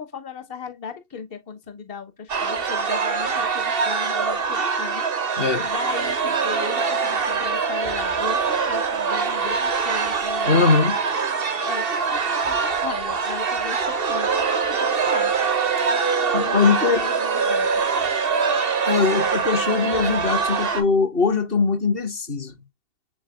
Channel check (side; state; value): left; late; 2.7 ms